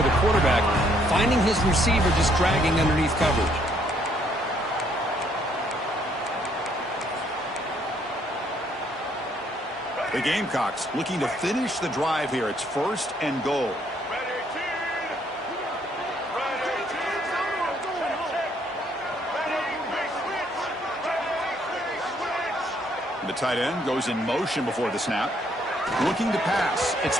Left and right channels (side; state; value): both; normal; correlation 0.68